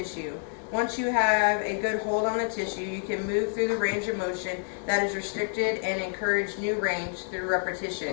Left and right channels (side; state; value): right; silent; 59 dB below the other